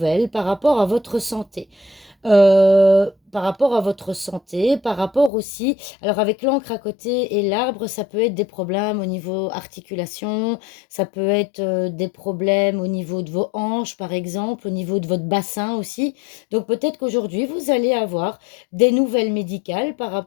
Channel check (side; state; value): right; drops out; at 5.3 s